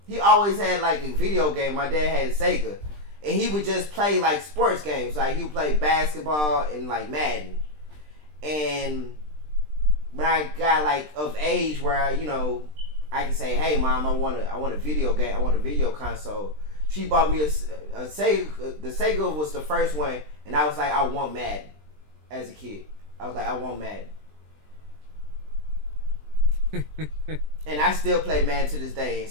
he always had like a video game. My dad had Sega. And he would just play like sports games. Like he would play basketball and like Madden. And when I got like of age where I can say, "Hey mom, I want a video game. I want a video console." She bought me a Sega. The Sega was the first one. And I was like, I want Madden. As a kid. I was like, I want Madden. And I still play Madden to this day and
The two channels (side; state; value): left; late; 20 ms